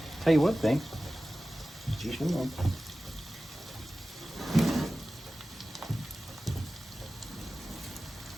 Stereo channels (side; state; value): both; normal; correlation 0.96